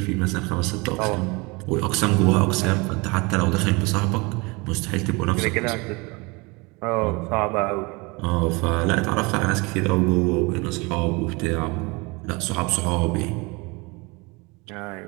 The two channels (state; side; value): quieter; left; 26.7 dB